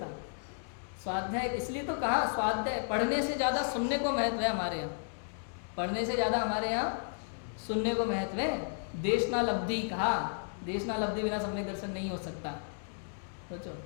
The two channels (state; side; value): silent; right; digital silence